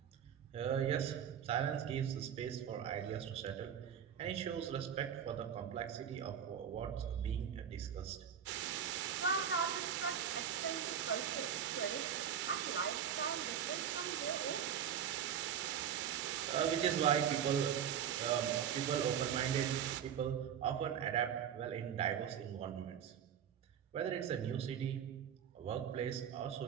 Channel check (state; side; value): quieter; left; 8.7 dB